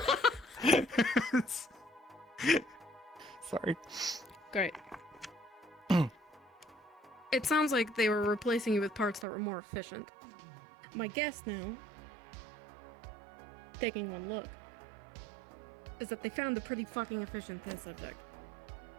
Sorry. Great. It sounds like they were replacing you with parts that were more efficient. My guess now, taking one look, is that they found a pretty fucking efficient test subject.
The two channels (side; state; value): left; drops out; at 9.2 s